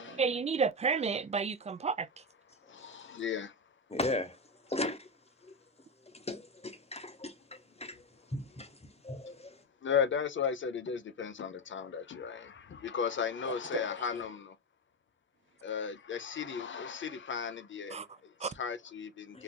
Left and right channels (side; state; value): both; normal; correlation 0.13